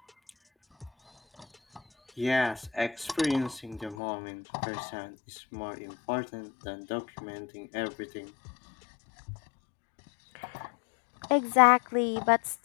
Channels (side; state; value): right; drops out; at 4.0 s